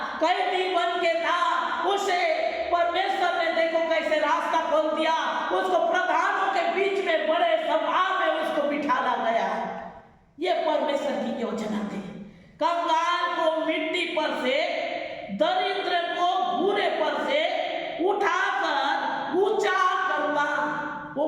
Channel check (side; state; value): both; identical; correlation 1.00